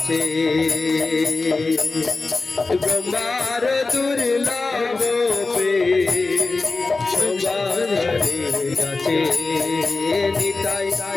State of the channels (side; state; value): right; quieter; 3.7 dB